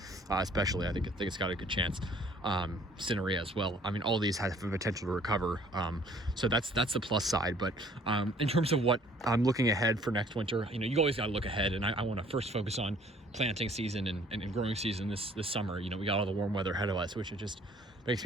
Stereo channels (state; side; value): normal; both; correlation 0.57